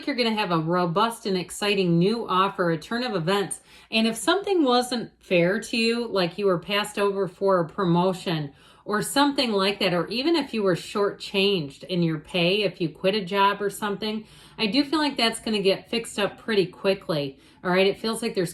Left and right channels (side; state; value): both; identical; correlation 1.00